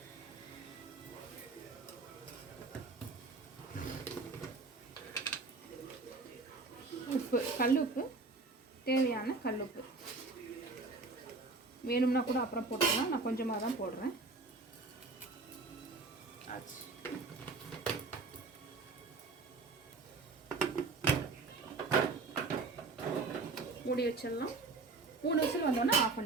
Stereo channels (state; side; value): quieter; left; 3.9 dB